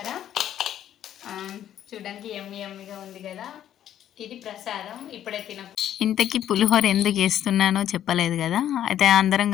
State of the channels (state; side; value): quieter; right; 11.0 dB